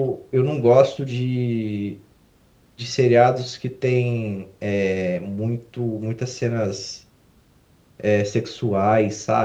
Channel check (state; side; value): identical; both; correlation 1.00